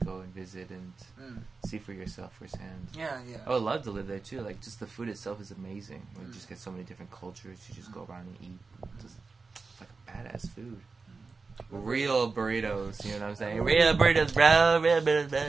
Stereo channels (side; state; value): left; quieter; 4.3 dB